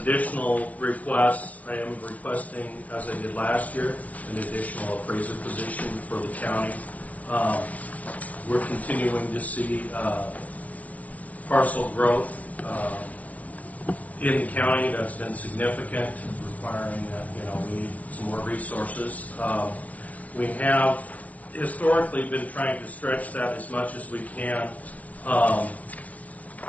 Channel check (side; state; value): right; late; 0.073 ms